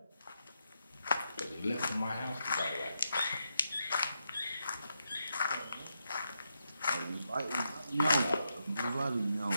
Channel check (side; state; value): both; inverted; correlation -0.83